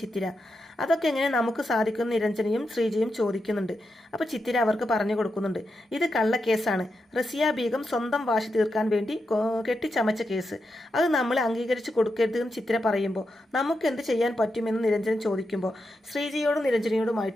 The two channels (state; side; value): normal; both; correlation 0.86